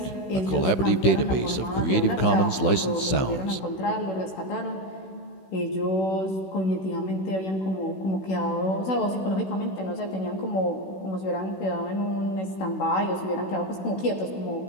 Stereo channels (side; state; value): right; late; 15 ms